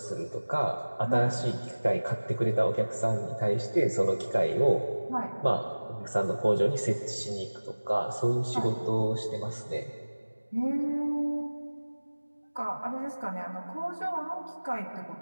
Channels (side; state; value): both; inverted; correlation -1.00